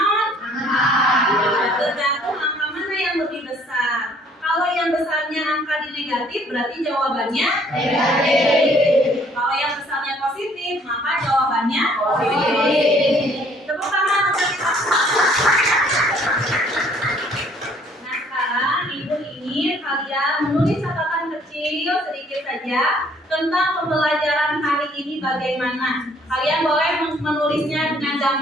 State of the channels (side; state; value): both; normal; correlation 0.60